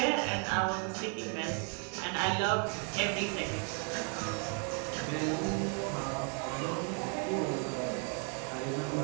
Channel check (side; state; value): left; quieter; 39.7 dB